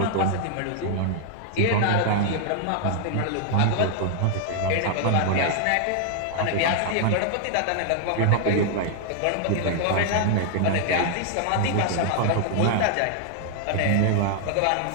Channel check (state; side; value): different; both; correlation 0.00